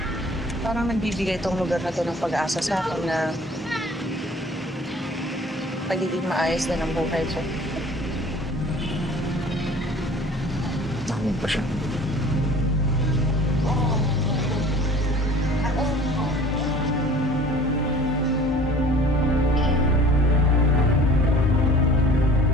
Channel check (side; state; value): both; normal; correlation 0.47